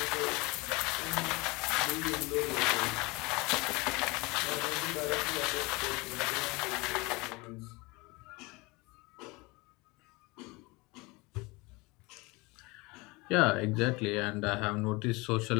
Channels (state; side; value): quieter; right; 24.9 dB